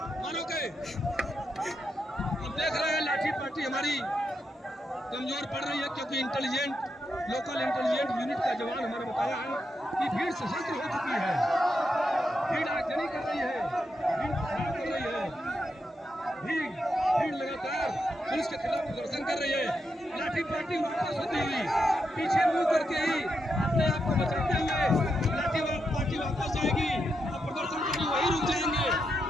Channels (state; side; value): normal; both; correlation 0.84